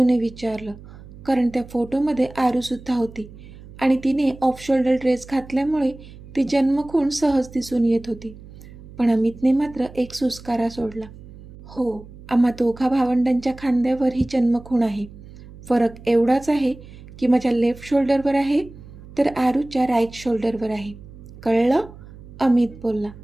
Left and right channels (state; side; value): noise; right; hum, 18 dB below the sound